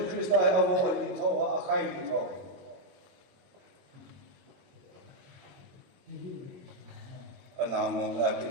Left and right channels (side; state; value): left; late; 22 ms